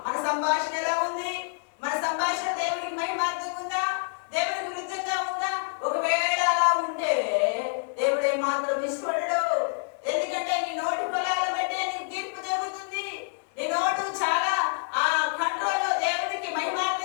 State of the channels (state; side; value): silent; right; digital silence